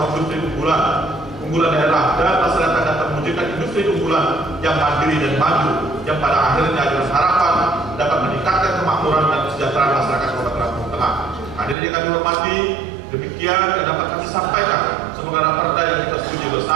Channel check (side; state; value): left; drops out; at 11.8 s